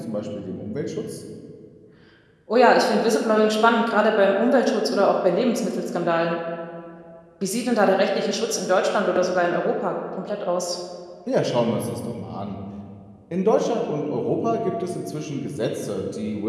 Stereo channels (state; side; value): identical; both; correlation 1.00